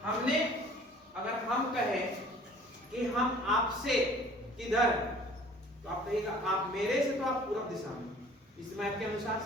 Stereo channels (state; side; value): normal; both; correlation 0.50